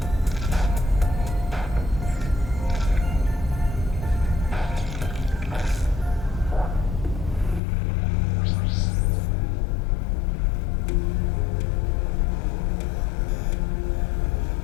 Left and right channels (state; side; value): drops out; right; at 7.6 s